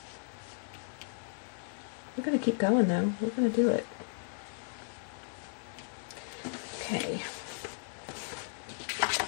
We're going to keep going, though. We're going to do it. Okay.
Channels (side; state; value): right; silent; digital silence